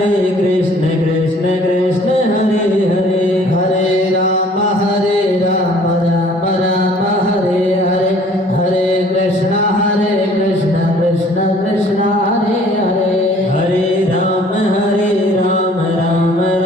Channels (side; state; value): both; normal; correlation 0.55